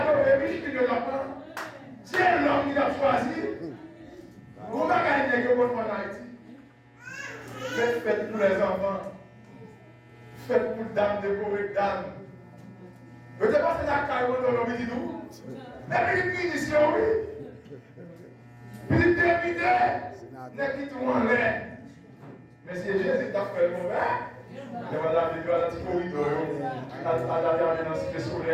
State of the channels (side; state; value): both; identical; correlation 1.00